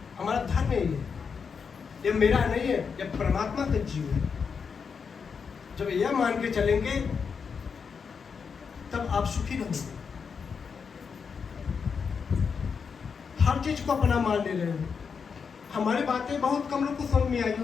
हमारा धर्म है ये मेरा नहीं है, ये परमात्मा का जीव है। जब यह मान के चलेंगे तब आप सुखी रहोगे। हर चीज को अपना मान ले रहे हो। हमारी बातें बहुत कम लोग को समझ में आई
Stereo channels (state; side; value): quieter; right; 6.0 dB